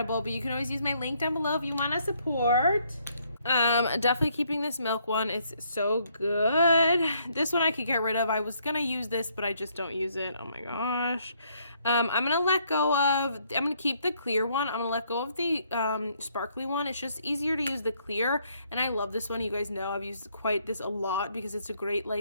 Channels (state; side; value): inverted; both; correlation -0.70